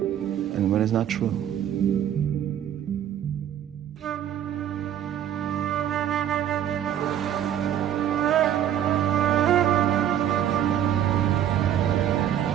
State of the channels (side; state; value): left; quieter; 10.3 dB